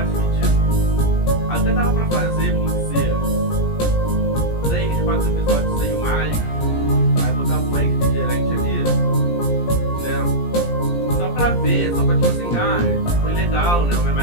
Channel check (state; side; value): late; right; 17 ms